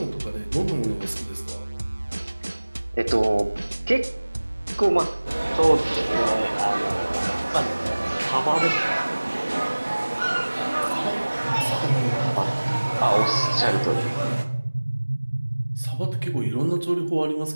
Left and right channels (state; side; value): inverted; both; correlation -1.00